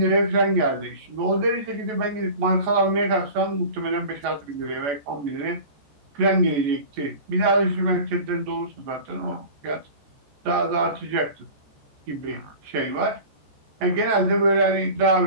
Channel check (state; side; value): late; left; 14 ms